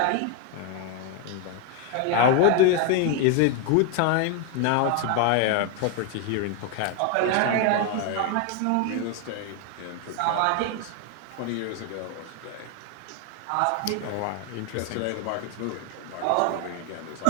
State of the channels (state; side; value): different; both; correlation 0.01